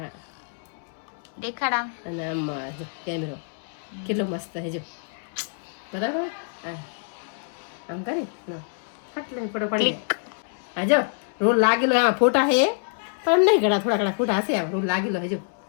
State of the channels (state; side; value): silent; right; digital silence